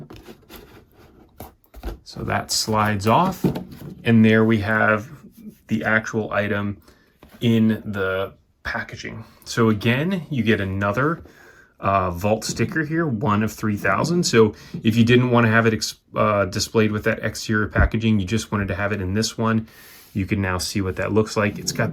So that slides off. And there we have the actual item in the packaging. So again, you get another Vault sticker here, 1 of 3,000. So if you didn't want to have it displayed with that exterior packaging, you just wanted to have it in this one, you can now see what that looks like. It's got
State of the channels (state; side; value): identical; both; correlation 1.00